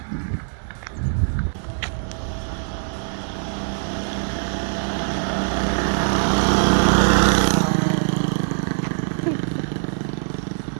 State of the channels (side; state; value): left; silent; 64 dB below the other